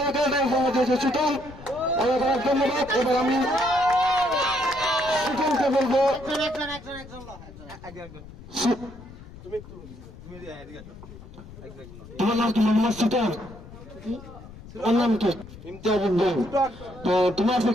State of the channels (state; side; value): noise; left; rumble, 17 dB below the sound